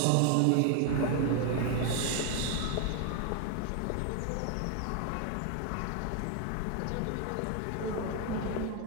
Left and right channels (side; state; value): both; different; correlation 0.01